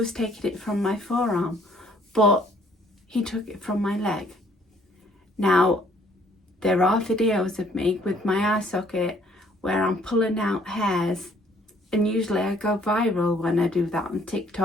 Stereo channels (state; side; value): normal; both; correlation 0.62